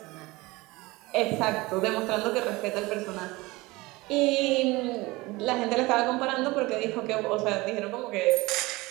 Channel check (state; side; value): quieter; left; 21.8 dB